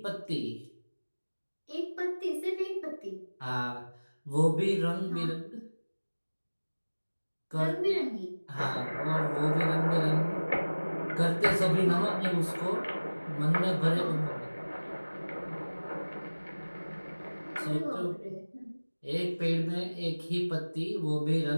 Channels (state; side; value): inverted; both; correlation -1.00